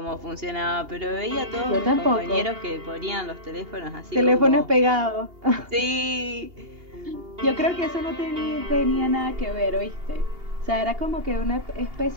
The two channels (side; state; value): left; late; 2.8 ms